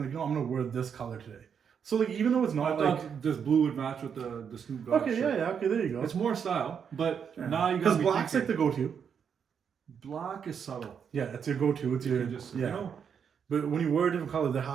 like, I'm gonna wear this color today. So like even though it's I not thought like this blue would match with the Snoop Dogg okay, shirt. yeah, okay, there you go. It's more style, but Yeah. now you got because black's like the go-to. black is subtle. Yeah, it's your go-to. It's your You just yeah. you know. But when you wear a different color, there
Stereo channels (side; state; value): left; quieter; 7.3 dB